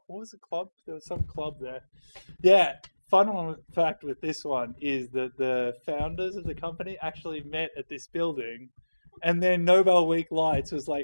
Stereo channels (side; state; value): both; inverted; correlation -1.00